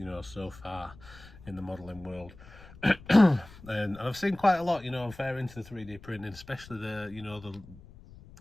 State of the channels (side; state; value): left; noise; rumble, 20 dB below the sound